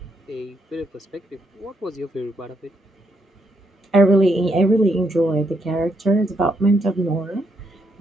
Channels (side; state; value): both; normal; correlation 0.76